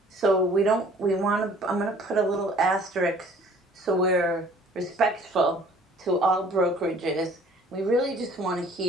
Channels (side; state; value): both; normal; correlation 0.53